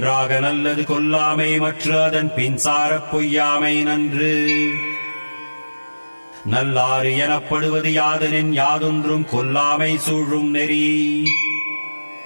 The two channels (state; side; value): inverted; both; correlation -1.00